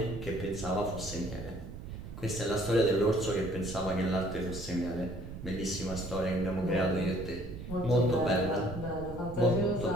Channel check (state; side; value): noise; right; rumble, 10 dB below the sound